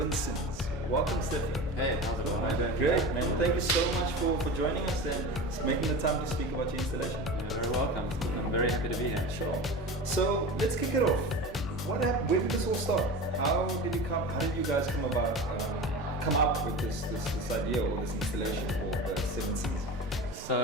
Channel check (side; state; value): both; normal; correlation 0.30